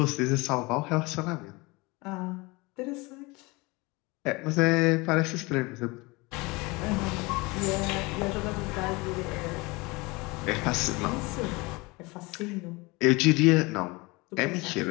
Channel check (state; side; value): quieter; right; 24.7 dB